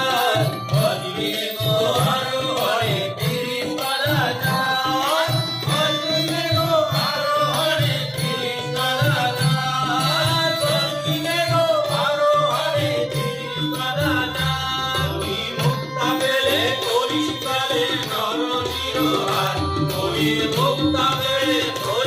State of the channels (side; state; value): both; identical; correlation 1.00